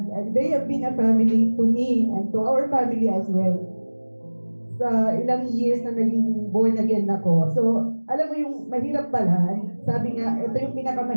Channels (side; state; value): both; inverted; correlation -1.00